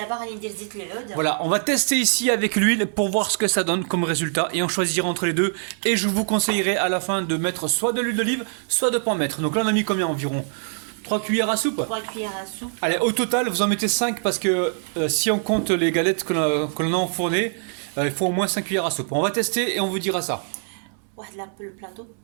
غادي ندير زيت العود. Voilà, on va tester ici avec l'huile pour voir ce que ça donne comme résultat et on choisira entre les deux et je vous conseillerais à la fin de mettre soit de l'huile d'olive soit de pas en mettre. Donc là on a mis combien environ 3 cuillères à soupe. 3 cuillères à soupe. Allez, au total vous en mettez 5 parce que si on compte les galettes que l'on a enfournées, il faut au moins 5 cuillères à soupe. On va tester et on vous dira ça. واحد البلاطو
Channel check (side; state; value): left; silent; 63 dB below the other